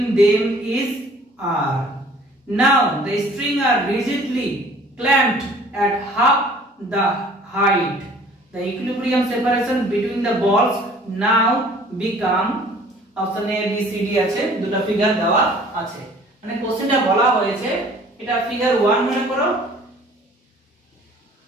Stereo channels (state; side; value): normal; both; correlation 0.52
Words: them is r. Now the strings are rigidly clamped at half the height. The equilibrium separation between the balls now become option A B C D আছে, দুটো figure দেওয়া আছে। মানে কোশ্চেনটা বলা হয়েছে এটা figure 1 মনে করো